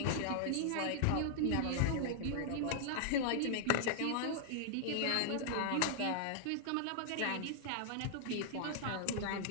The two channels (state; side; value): different; both; correlation -0.01